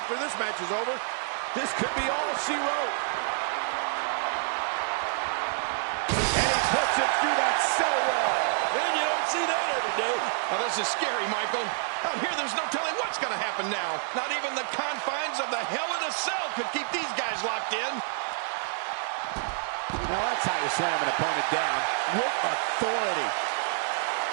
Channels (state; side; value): silent; left; digital silence